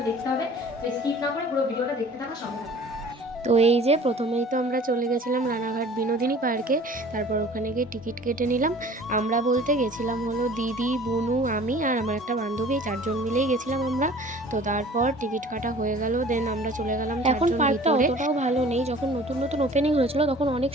দেখতে হবে। তো স্কিপ না করে পুরো ভিডিওটা দেখতে থাকা সঙ্গে থাকো। তো এই যে প্রথমেই তো আমরা চলে গেছিলাম রানাঘাট বিনোদিনী পার্কে। তারপর ওখানে গিয়ে টিকিট কেটে নিলাম। আমরা বলতে গেছিলাম হলো দিদি, বুনু, আমি আর আমার একটা বান্ধবী, 4 জন মিলেই গেছিলাম আমরা। তো তারপর টিকিট কাটা হয়ে গেল, দেন আমরা চলে গেলাম। এখন পার্কটা অতটাও ভালো নেই, যখন নতুন নতুন ওপেনিং হয়েছিল তখন অনেক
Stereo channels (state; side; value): normal; both; correlation 0.47